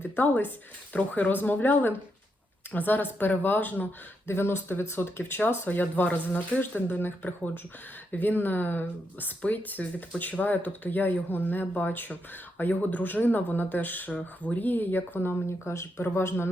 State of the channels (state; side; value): normal; both; correlation 0.81